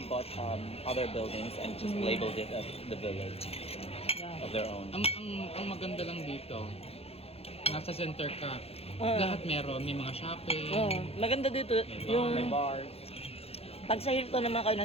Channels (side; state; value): right; late; 0.29 ms